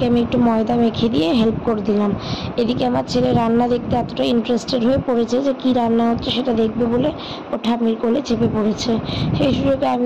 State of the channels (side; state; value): both; identical; correlation 1.00